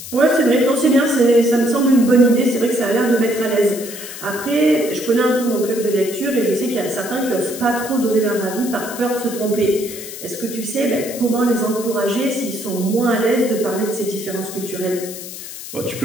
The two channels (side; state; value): left; noise; hiss, 11 dB below the sound